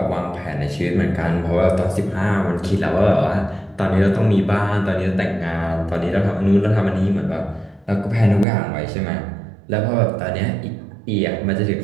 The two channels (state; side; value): drops out; left; at 8.5 s